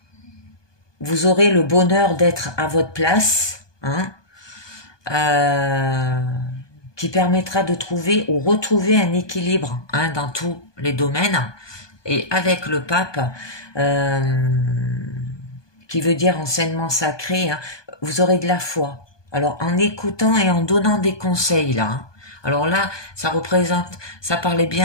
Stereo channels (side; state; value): right; late; 1.2 ms